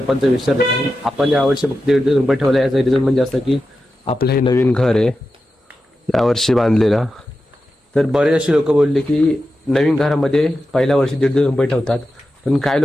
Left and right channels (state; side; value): normal; both; correlation 0.91